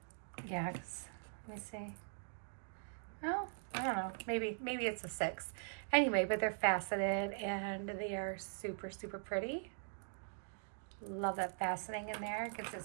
Yeah, let me see. Oh, I don't know. Maybe it's a 6. Anyway, but they're faceted and they are super, super pretty. Love that faceting in there. Gives it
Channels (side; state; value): left; silent; digital silence